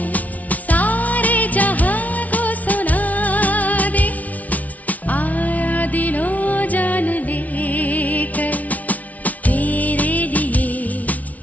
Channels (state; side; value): late; right; 0.071 ms